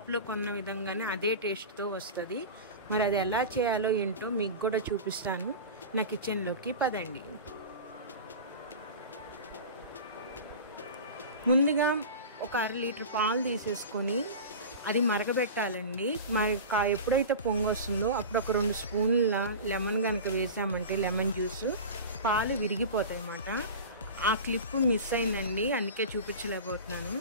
కొన్న విధంగానే అదే టేస్ట్తో వస్తుంది. మరి అది ఎలా చేయాలో ఏంటో మీకు కూడా చూపిస్తాను. నా కిచెన్లోకి పదండి. ముందుగా ఒక 1/2 లీటర్ పాలు తీసేసుకొని అది మరగబెట్టాలండి. ఎప్పుడైతే పొంగు వస్తుందో అప్పుడు ఒక 2 స్పూన్ల లెమన్ కనుక వేసామంటే లెమన్ జ్యూస్ పాలు విరిగిపోతాయి అన్నమాట. ఆ క్లిప్ మిస్ అయిందండి, అందుకే చూపించలేకపోతున్నాను.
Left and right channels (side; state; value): both; inverted; correlation -0.31